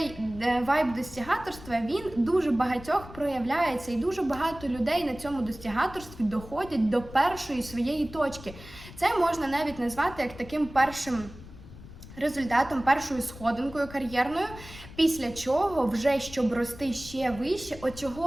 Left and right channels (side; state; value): left; noise; rumble, 16 dB below the sound